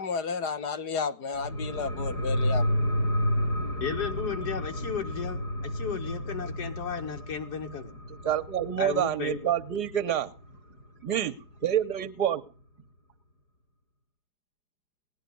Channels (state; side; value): late; right; 4.8 ms